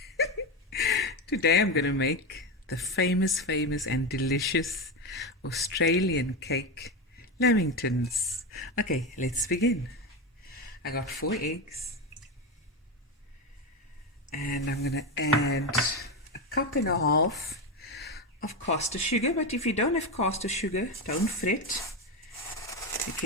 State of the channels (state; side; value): normal; both; correlation 0.14